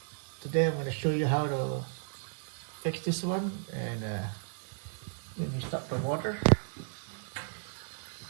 today I'm going to show you how to fix this one. And when you stop the water,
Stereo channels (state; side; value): silent; left; digital silence